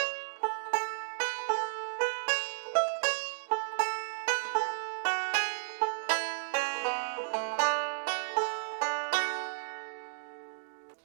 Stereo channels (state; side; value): silent; left; digital silence